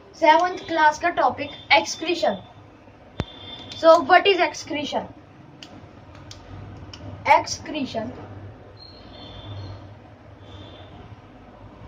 7th क्लास का topic excretion. So what is excretion? Excretion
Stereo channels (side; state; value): both; identical; correlation 1.00